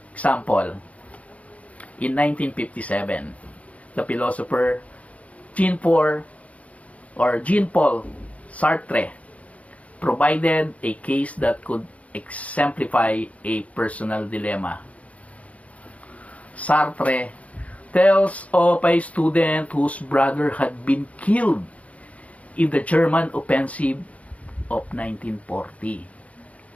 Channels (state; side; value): late; right; 0.066 ms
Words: Example, in 1957, the philosopher Jean-Paul Sartre provided a case that could exemplify a personal dilemma. Sartre tells of a student whose brother had been killed in the German offensive of 1940.